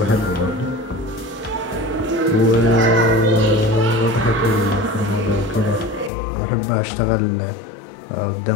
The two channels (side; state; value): right; drops out; at 6.1 s